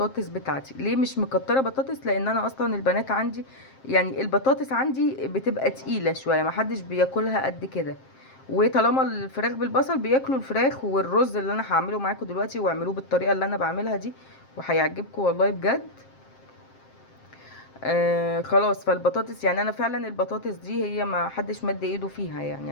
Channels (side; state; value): right; late; 7.6 ms